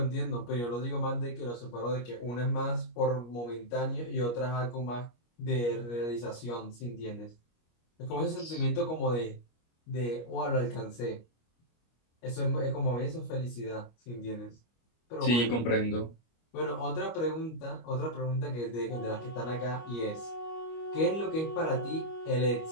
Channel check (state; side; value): late; right; 25 ms